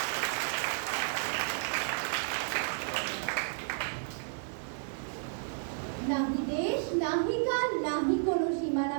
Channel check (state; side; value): silent; left; digital silence